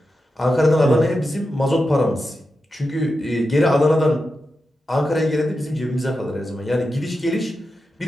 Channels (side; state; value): both; normal; correlation 0.90